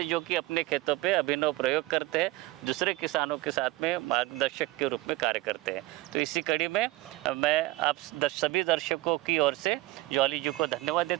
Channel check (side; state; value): left; quieter; 18.4 dB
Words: जो कि अपने खेतों पे अभिनव प्रयोग करते हैं, दूसरे किसानों के साथ में मार्गदर्शक के रूप में कार्य करते हैं। तो इसी कड़ी में मैं आप सभी दर्शकों की ओर से जॉली जी को धन्यवाद